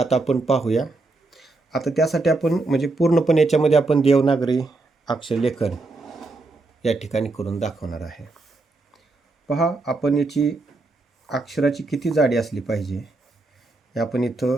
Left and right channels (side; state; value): left; quieter; 3.3 dB